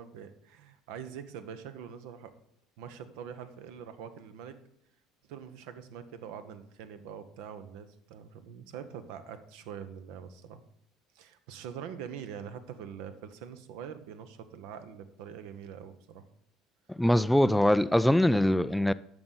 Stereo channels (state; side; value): normal; both; correlation 0.94